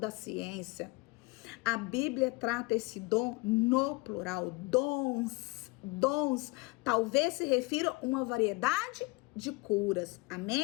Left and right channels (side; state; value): right; quieter; 25.1 dB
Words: ciência. A Bíblia trata esse dom no plural, dons, talvez se refira a uma variedade de curas,